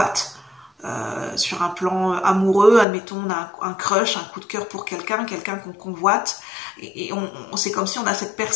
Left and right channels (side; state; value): right; drops out; at 2.9 s